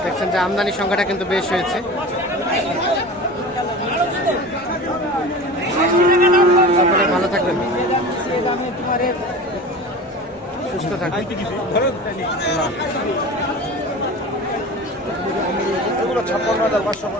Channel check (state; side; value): normal; both; correlation 0.34